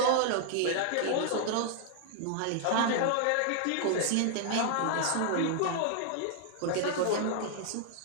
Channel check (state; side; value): different; both; correlation 0.00